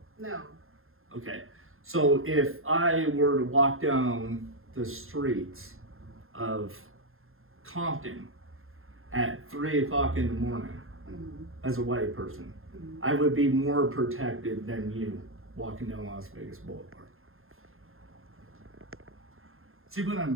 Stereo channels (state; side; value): late; left; 0.61 ms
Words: No. Okay, so if I were to walk down the streets of Compton at 3 o'clock in the morning Mhm. as a white person, Mhm. I would be more protected than you walking down Las Vegas Boulevard. See what I'm